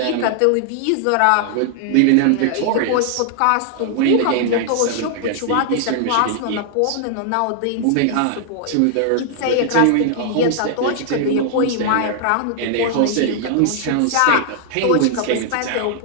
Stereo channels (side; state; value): both; different; correlation 0.00